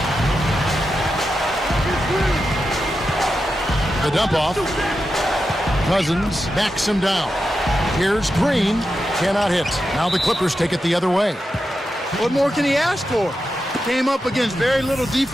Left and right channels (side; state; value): both; normal; correlation 0.89